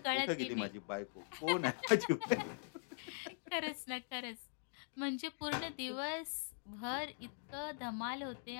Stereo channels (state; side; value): silent; right; digital silence